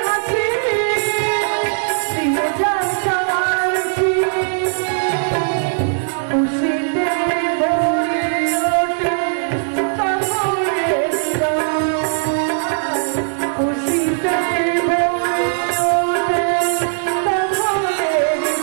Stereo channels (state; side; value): silent; left; digital silence